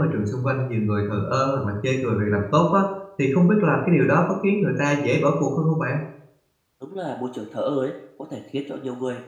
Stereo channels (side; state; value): both; identical; correlation 1.00